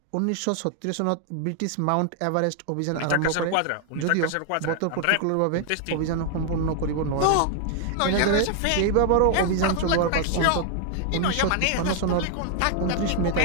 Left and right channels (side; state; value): both; different; correlation 0.00